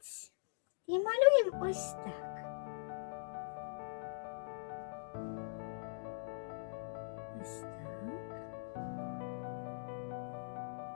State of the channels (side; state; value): right; silent; digital silence